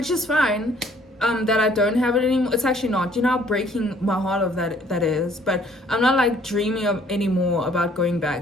is fine. That I don't have it anymore. It's actually not. You know how breaking my heart of that is. But I'm not like dreaming of anymore about going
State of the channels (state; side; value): normal; both; correlation 0.60